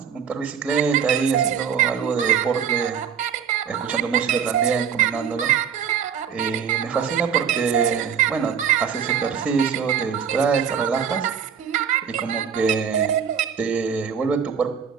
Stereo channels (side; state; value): left; quieter; 7.5 dB